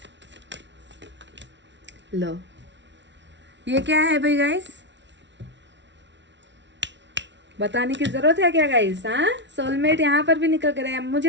लो ये क्या है भाई गाइस, बताने की जरूरत है क्या गाइस। हाँ, सोलमेट यहाँ पर भी निकल कर आया।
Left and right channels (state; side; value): late; left; 0.52 ms